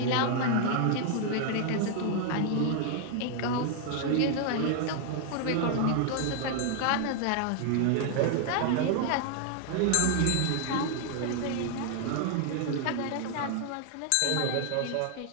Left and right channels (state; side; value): different; both; correlation 0.00